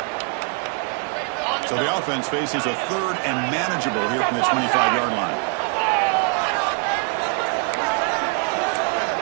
So the offense faces a third and manageable here from the 25-yard line.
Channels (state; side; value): quieter; left; 36.1 dB